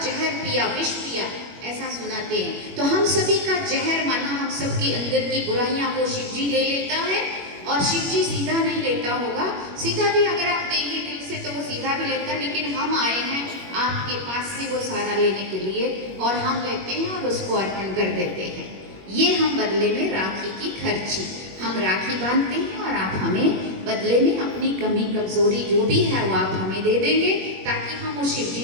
पिया, विष पिया, ऐसा सुनाते हैं। तो हम सभी का जहर माना हम सबके अंदर की बुराइयां वो शिव जी ले लेता है, और शिव जी सीधा नहीं लेता होगा। सीधा भी अगर आप देंगे दिल से तो वो सीधा भी लेता है, लेकिन हम आए हैं आपके पास से वो सारा लेने के लिए, और हम लेते हैं और उसको अर्पण कर देते हैं। ये हम बदले में राखी की खर्ची, हम राखी बांधते हैं और आप हमें बदले में अपनी कमी कमजोरी जो भी है वो आप हमें दे देंगे, ताकि हम उस शिव जी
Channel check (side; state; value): left; late; 21 ms